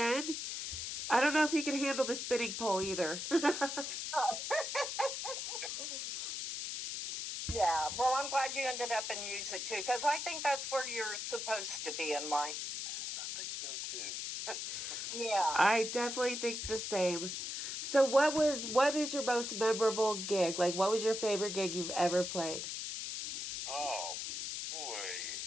I don't know if he can handle the spinning pole either. Yeah, well, I'm glad you ended up in music, too, because I think that's where you're supposed to be in life. I think so, too. Yeah. I definitely think the same. So what is your most memorable gig? Like, what was your favorite gig you've ever played? Oh, boy.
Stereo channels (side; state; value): left; noise; hiss, 4 dB below the sound